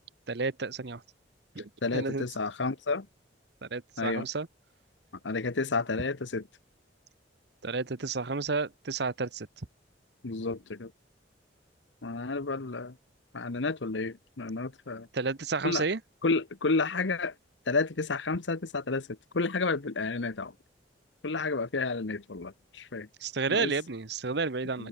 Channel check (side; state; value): both; normal; correlation -0.05